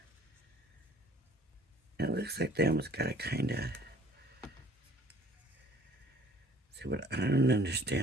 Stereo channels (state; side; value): normal; both; correlation 0.55